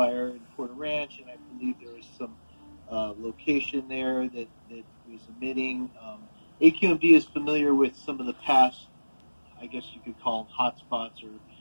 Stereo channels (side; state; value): both; inverted; correlation -1.00